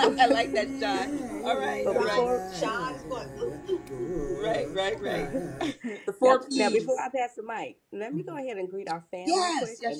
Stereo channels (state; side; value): identical; both; correlation 1.00